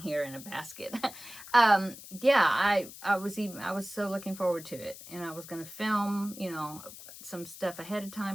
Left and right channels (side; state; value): left; noise; hiss, 15 dB below the sound